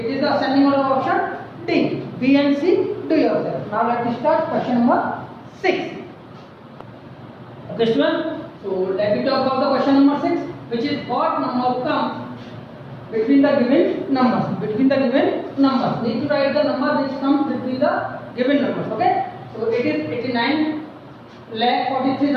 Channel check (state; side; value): identical; both; correlation 1.00